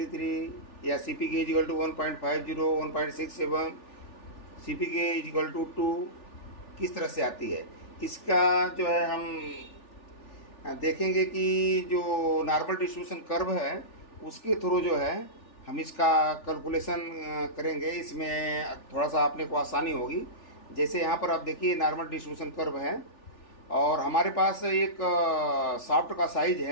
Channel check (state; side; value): late; right; 3.4 ms